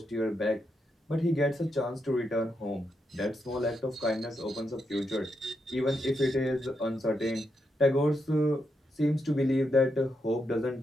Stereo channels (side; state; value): both; normal; correlation 0.83